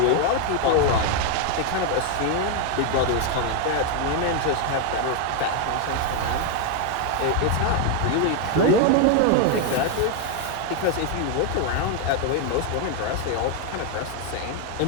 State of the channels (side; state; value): both; different; correlation 0.01